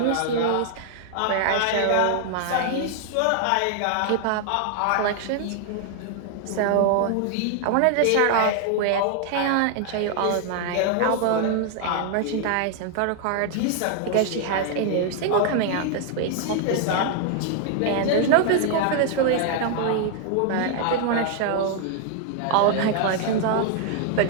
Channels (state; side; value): different; both; correlation 0.00